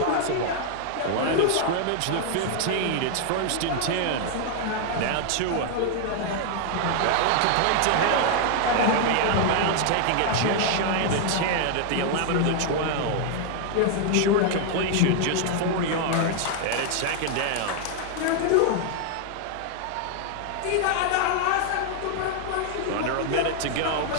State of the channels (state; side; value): different; both; correlation 0.00